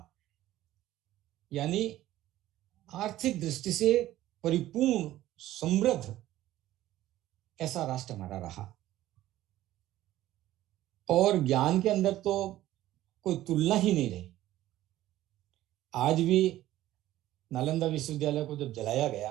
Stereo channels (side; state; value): left; quieter; 14.6 dB